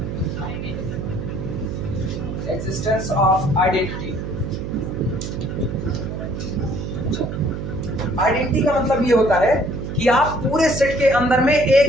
existence of identity। आइडेंटिटी का मतलब ये होता है कि आप पूरे सेट के अंदर में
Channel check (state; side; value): noise; right; hum, 6 dB below the sound